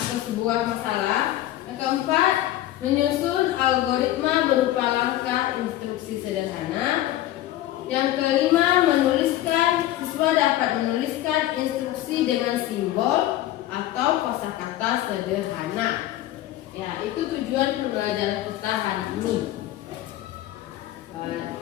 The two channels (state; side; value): quieter; right; 14.3 dB